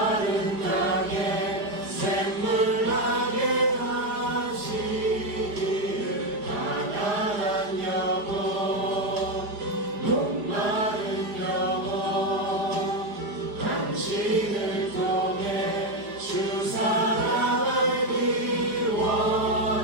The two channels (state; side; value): late; left; 4.9 ms